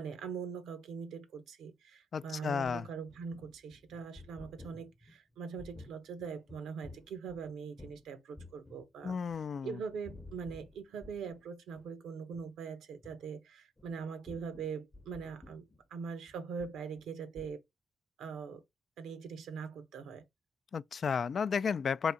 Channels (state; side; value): normal; both; correlation 0.72